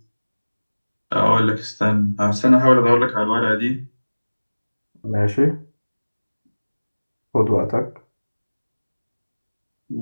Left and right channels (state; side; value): inverted; both; correlation -1.00